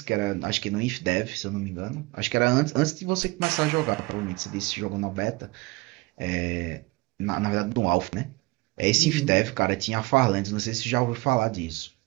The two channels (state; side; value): quieter; left; 24.0 dB